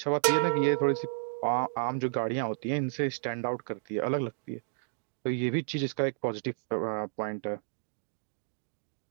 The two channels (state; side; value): silent; left; digital silence